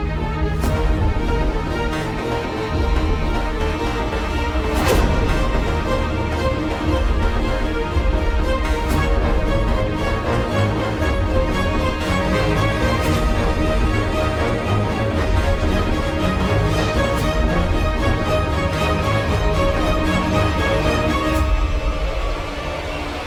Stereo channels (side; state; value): both; identical; correlation 1.00